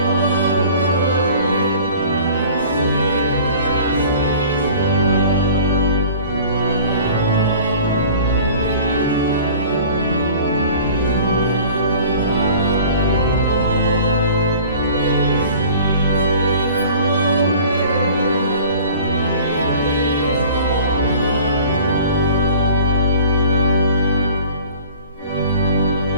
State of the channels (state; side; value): inverted; both; correlation -0.45